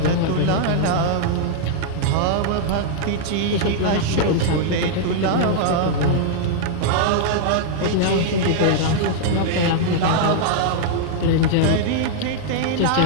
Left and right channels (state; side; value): different; both; correlation -0.01